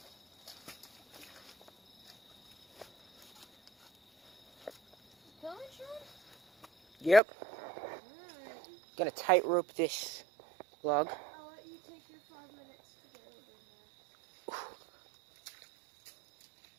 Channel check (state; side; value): drops out; left; at 7.2 s